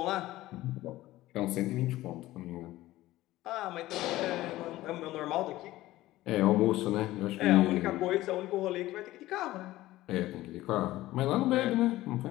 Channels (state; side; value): quieter; right; 16.5 dB